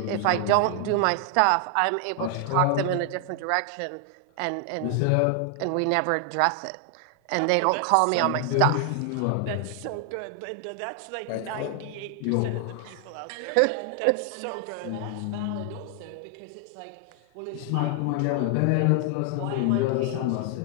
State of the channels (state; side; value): different; both; correlation 0.00